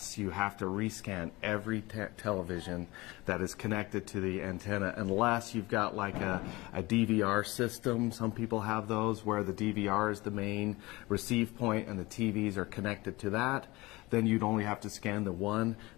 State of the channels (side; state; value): right; quieter; 21.6 dB